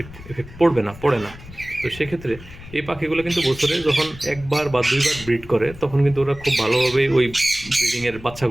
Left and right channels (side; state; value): left; noise; rumble, 17 dB below the sound